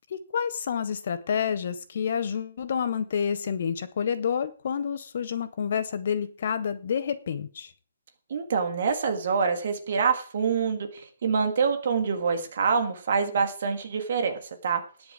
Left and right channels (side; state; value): both; inverted; correlation -0.67